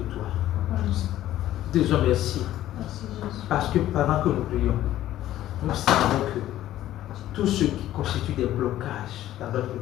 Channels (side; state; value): right; quieter; 13.5 dB